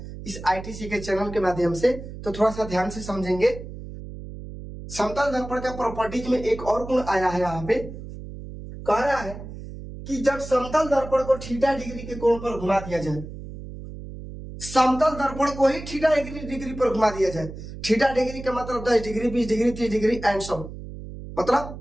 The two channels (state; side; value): noise; right; hum, 12 dB below the sound